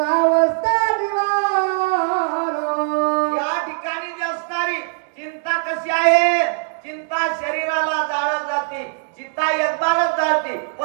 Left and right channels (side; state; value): left; silent; digital silence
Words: कशी आहे? चिंता शरीराला जाळत जाते, चिंता एकबारच जाळते,